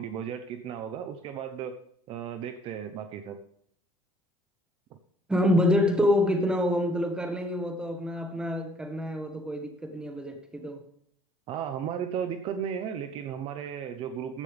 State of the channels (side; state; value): both; normal; correlation 0.60